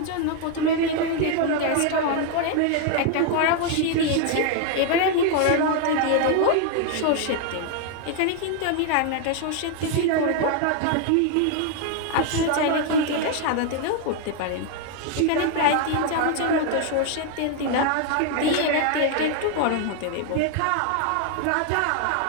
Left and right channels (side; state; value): both; different; correlation 0.00